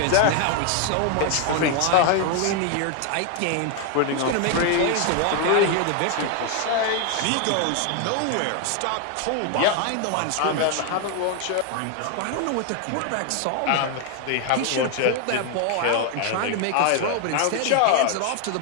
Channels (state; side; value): different; both; correlation 0.00